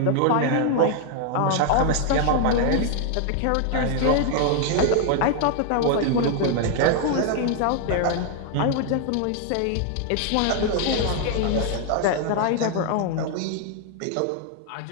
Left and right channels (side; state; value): both; different; correlation 0.00